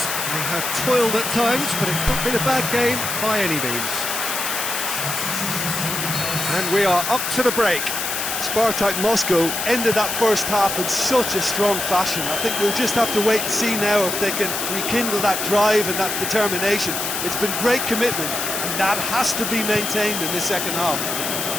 They have toiled at times, but it's not been a bad game by any means. And we are up to the break. Spartak Moscow ended that first half in such a strong fashion. I think we'll just have to wait and see now if they can rekindle that drive and that determination. It's been great commitment, and that has to be maintained in the second half.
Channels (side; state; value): left; noise; hiss, 2 dB below the sound